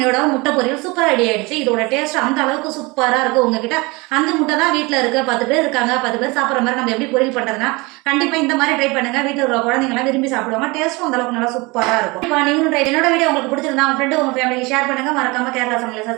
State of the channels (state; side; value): quieter; left; 25.2 dB